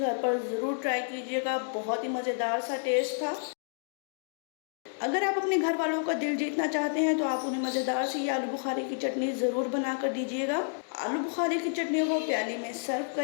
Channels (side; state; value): right; silent; digital silence